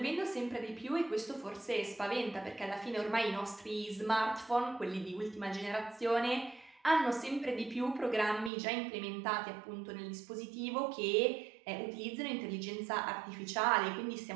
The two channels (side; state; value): left; drops out; at 8.5 s